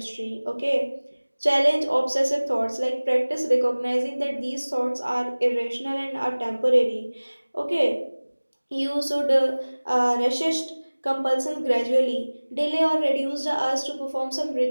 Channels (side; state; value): both; inverted; correlation -1.00